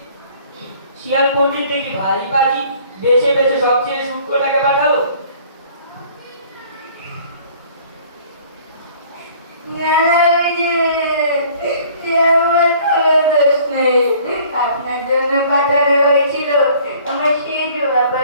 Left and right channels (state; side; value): inverted; both; correlation -0.53